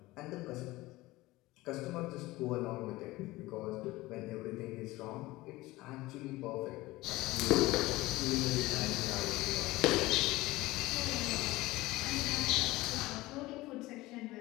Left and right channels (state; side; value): quieter; right; 19.2 dB